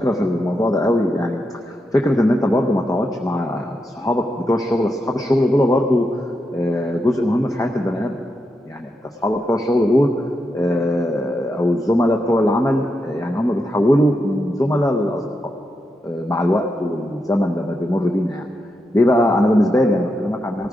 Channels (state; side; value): normal; both; correlation 0.85